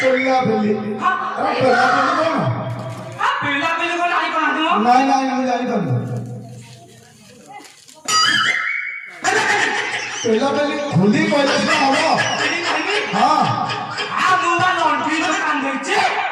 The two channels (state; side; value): identical; both; correlation 1.00